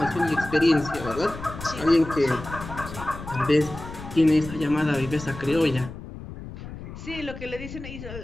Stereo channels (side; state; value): left; noise; rumble, 12 dB below the sound